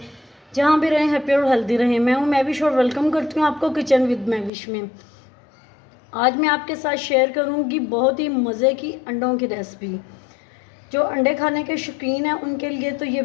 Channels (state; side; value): drops out; right; at 4.5 s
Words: जहाँ भी रहें हैप्पी और हेल्दी रहें। मैं हूँ मैविश और वेलकम करती हूँ आपको किचन विद मैविश में। आज मैं आपके साथ शेयर करूँगी बहुत ही मज़े की अंडों की रेसिपी। जो अंडे खाने के शौकीन हैं उनके लिए तो ये